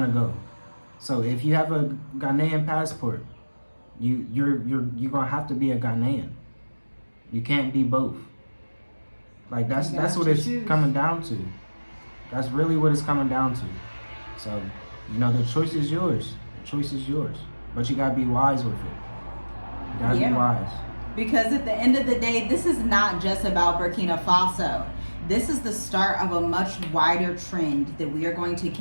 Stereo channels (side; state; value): both; inverted; correlation -1.00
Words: to go. So if you have a Ghanaian passport, you're gonna have to be a Ghanaian. You can't be both. Like that's what it's coming down to. That's really what it's coming down to. So, you know, the choice is yours. Choice is yours, but you gotta be wise with it. You gotta be wise. Because at the end of the day, this is not just about Burkina Faso. This is the start of a much wider trend that we are going to